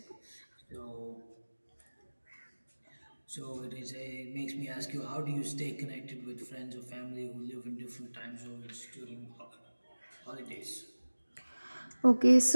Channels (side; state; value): both; inverted; correlation -1.00